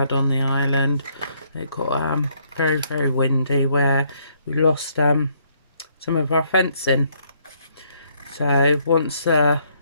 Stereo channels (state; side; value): inverted; both; correlation -0.70